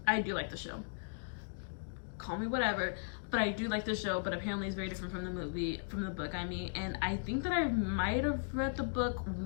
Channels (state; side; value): silent; right; digital silence